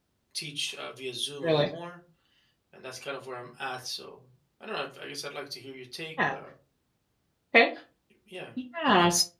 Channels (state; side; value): identical; both; correlation 1.00